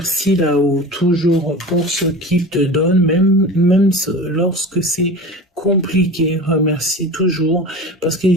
là-haut, toujours pour ce qu'il te donne, même lorsque c'est compliqué, remercie toujours, parce qu'il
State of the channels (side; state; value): both; normal; correlation 0.33